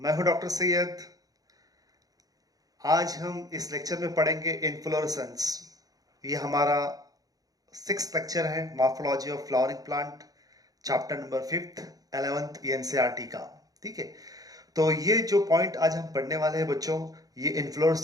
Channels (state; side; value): late; left; 0.18 ms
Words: हूं डॉक्टर सैयद। आज हम इस लेक्चर में पढ़ेंगे इन्फ्लोरेसेंस। ये हमारा 6th लेक्चर है morphology of flowering plant, chapter number 5th 11th NCERT का। ठीक है, तो ये जो पॉइंट आज हम पढ़ने वाले हैं बच्चों, ये